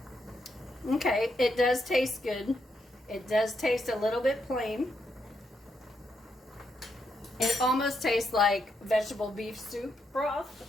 Okay, it does taste good. It does taste a little bit plain. It almost tastes like vegetable beef soup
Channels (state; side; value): normal; both; correlation 0.79